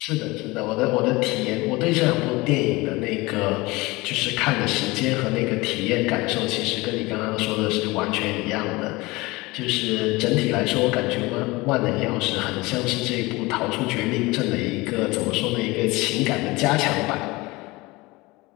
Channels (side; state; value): right; quieter; 22.4 dB